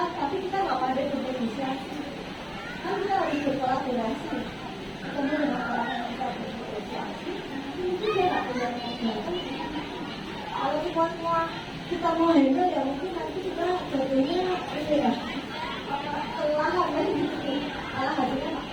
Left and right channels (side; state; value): both; identical; correlation 1.00